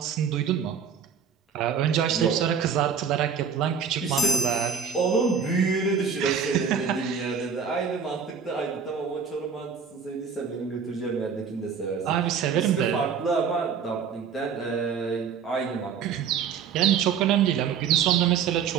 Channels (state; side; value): quieter; left; 6.8 dB